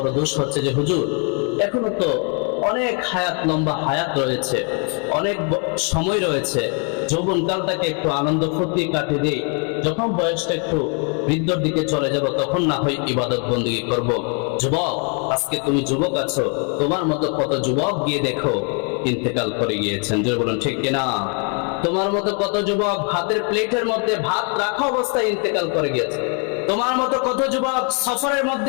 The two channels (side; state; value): right; quieter; 36.3 dB